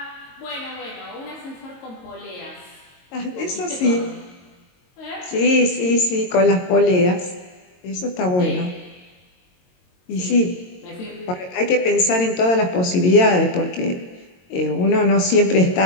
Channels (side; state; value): right; late; 22 ms